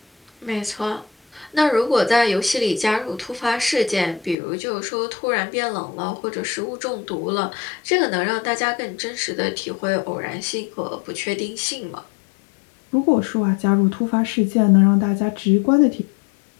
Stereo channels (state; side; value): drops out; right; at 4.4 s